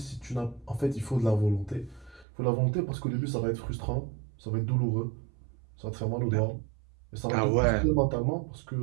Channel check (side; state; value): left; drops out; at 2.2 s